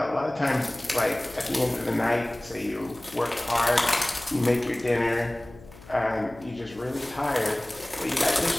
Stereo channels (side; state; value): left; noise; hum, 21 dB below the sound